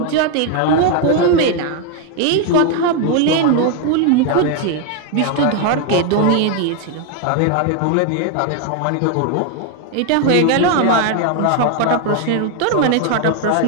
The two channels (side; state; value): both; different; correlation 0.01